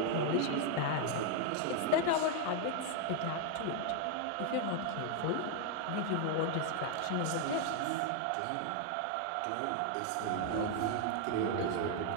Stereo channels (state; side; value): different; both; correlation 0.00